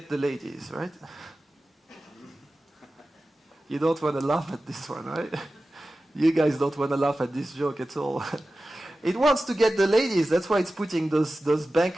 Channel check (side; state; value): both; normal; correlation 0.95